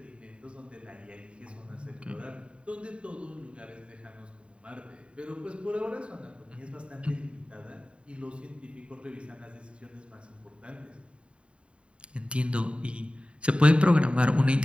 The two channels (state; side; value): late; left; 0.058 ms